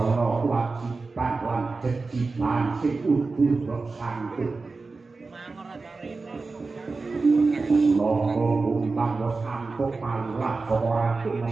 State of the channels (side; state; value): left; quieter; 3.9 dB